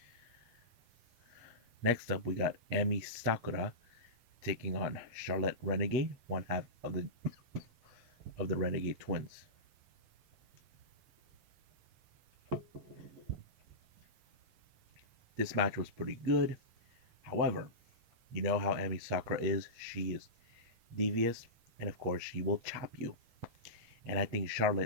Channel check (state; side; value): late; left; 8.3 ms